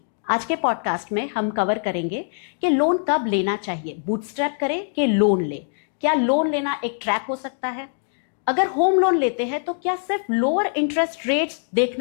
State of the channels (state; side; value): silent; right; digital silence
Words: आज के पॉडकास्ट में हम कवर करेंगे कि लोन कब लेना चाहिए, बूटस्ट्रैप करें कि लोन ले, क्या लोन लेना एक ट्रैप हो सकता है, अगर होम लोन लेते हैं तो क्या सिर्फ लोअर इंटरेस्ट रेट्स